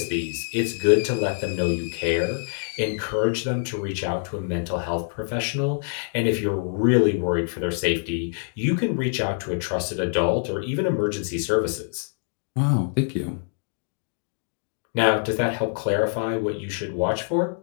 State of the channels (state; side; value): silent; right; digital silence